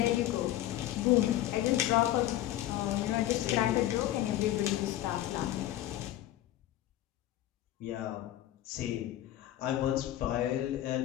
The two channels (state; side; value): quieter; right; 13.9 dB